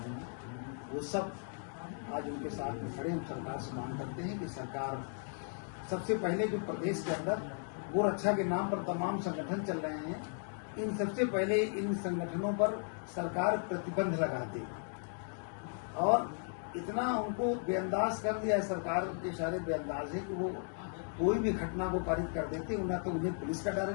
हैं, वो सब आज उनके साथ में खड़े। हम सरकार से मांग करते हैं कि सरकार सबसे पहले जो प्रदेश के अंदर गोरक्षा के नाम पर तमाम संगठन चल रहे हैं, इन सबसे पहले इन संगठनों पर सरकार प्रतिबंध लगा दे और इतना उनको बेअंदाज कर दिया है, सरकार के सारे बेअंदाज है कि वो कोई भी घटना को पारित कर देते हैं। ना तो उन्हें पुलिस का डर है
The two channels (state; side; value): silent; right; 54 dB below the other